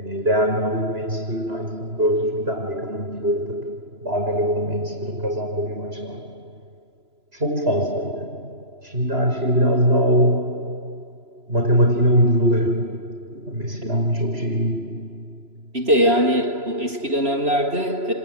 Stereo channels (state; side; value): late; left; 3.0 ms